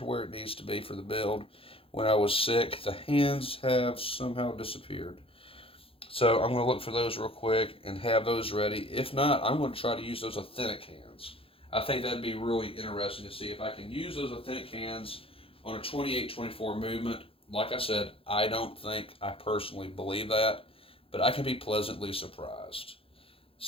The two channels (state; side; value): late; right; 0.27 ms